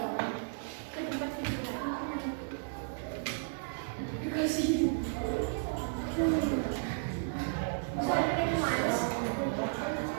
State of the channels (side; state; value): left; silent; digital silence